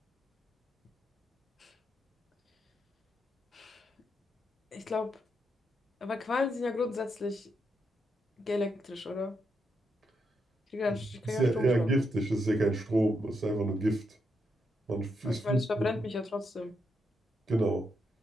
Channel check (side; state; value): both; normal; correlation 0.81